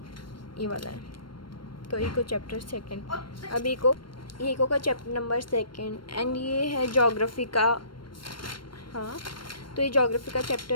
ये वाला है। तो इको चैप्टर 2। अब इको का चैप्टर नंबर 2। एंड ये है जोग्राफी का। हाँ, तो ये जोग्राफी का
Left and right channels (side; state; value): right; late; 0.72 ms